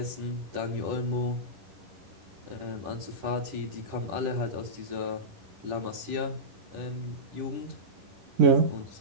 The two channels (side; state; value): left; late; 10 ms